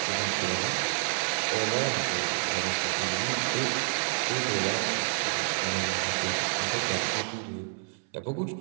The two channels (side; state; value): left; silent; 59 dB below the other